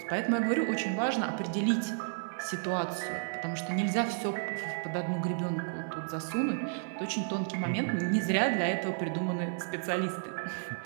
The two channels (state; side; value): silent; left; 56 dB below the other